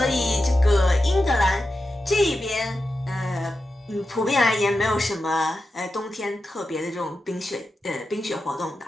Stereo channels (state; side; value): normal; both; correlation 0.90